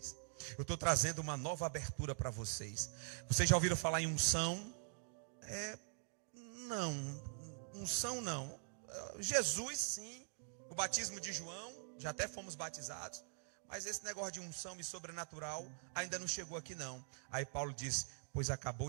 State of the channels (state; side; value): silent; left; digital silence